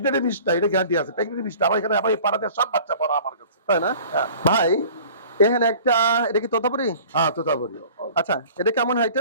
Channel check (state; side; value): inverted; both; correlation -0.46